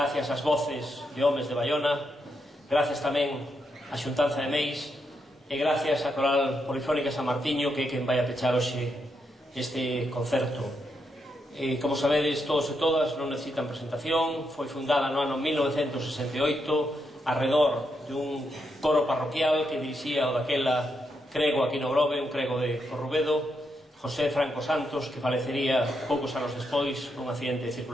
ás voces de homes de Baiona, gracias tamén á Xuntanza de Meis, e gracias á Coral Polifónica San Martiño, que é quen vai a pechar hoxe este concerto. Como sabedes, todos e todas, non necesitan presentación. Foi fundada no ano 1968 arredor dun coro parroquial que dirixía o daquela crego aquí no Grove, un crego de Corrubedo, José Franco Santos, que falecería poucos anos despois nun accidente de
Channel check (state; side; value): normal; both; correlation 0.81